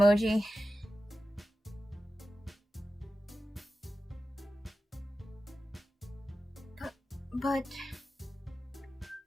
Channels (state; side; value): normal; both; correlation 0.93